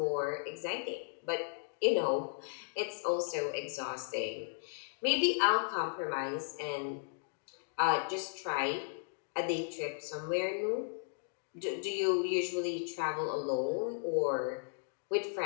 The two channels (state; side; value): silent; right; digital silence